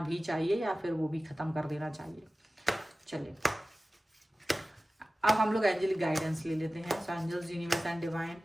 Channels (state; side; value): normal; both; correlation 0.96